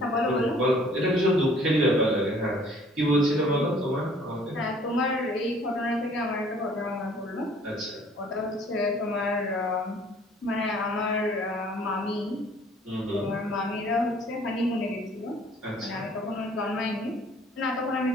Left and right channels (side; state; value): both; normal; correlation 0.56